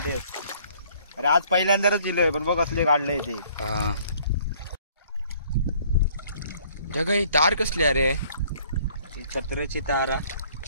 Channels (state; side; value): inverted; both; correlation -0.59